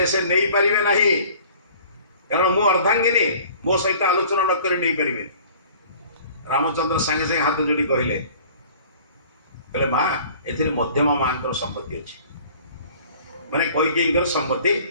से नहीं पारे ना कारण मु अर्धांगिनी मो सहित आलोचना न कर नहीं पारे रामचंद्र सांगे सांगे हाथ जोड़ी कहले माँ ए मध्यम माँ संपत्ति अच्छी माने कैकेयी संपत्ति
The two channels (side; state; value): both; inverted; correlation -0.49